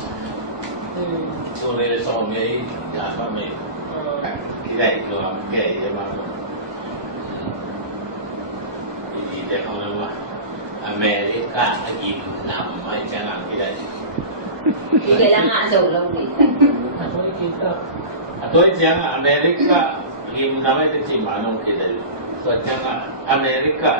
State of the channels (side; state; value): left; late; 1.2 ms